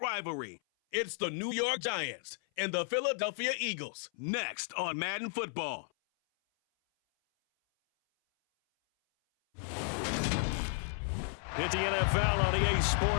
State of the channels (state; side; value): silent; right; 55 dB below the other